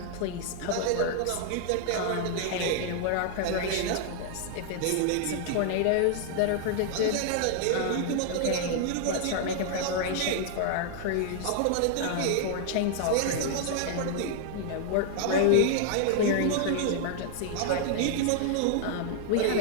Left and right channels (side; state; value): both; different; correlation 0.00